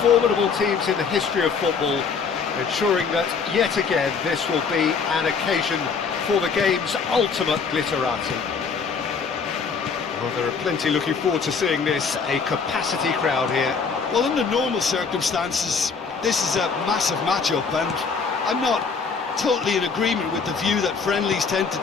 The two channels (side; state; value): right; quieter; 5.4 dB